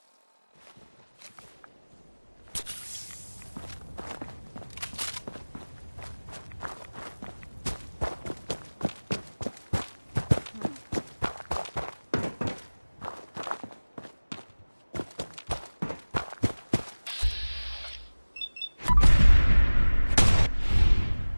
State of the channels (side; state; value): both; inverted; correlation -1.00